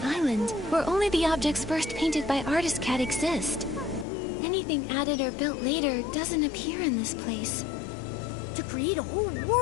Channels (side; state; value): right; drops out; at 4.0 s